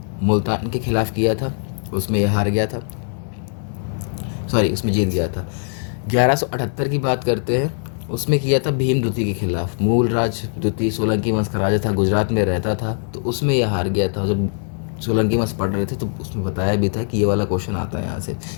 मुल्तान के खिलाफ किया था। उसमें यह हार गया था, उसमें जीत गया था। 1178 की बात करते हैं, उसमें किया था भीम द्वितीय के खिलाफ। मूलराज द्वितीय सोलंकी वंश का राजा था, गुजरात में रहता था, तो उसमें यह हार गया था। जब सोलंकी वंश पढ़ रहे थे तो उसमें बताया भी था कि ये वाला क्वेश्चन आता है यहाँ से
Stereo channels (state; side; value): silent; right; 58 dB below the other